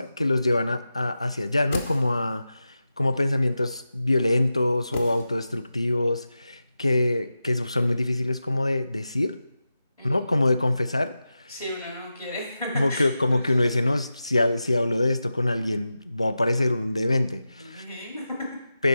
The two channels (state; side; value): inverted; both; correlation -0.92